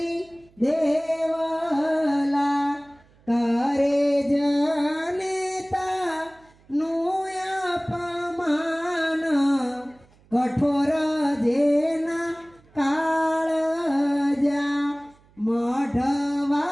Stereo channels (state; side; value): noise; right; hum, 30 dB below the sound